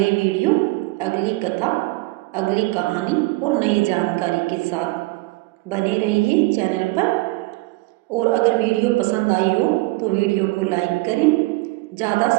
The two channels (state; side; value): quieter; left; 22.1 dB